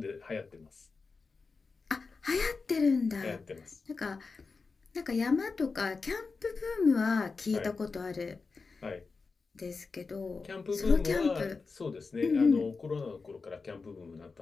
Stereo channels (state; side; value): quieter; right; 4.4 dB